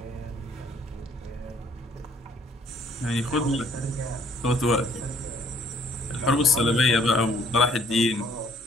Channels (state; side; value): normal; both; correlation 0.61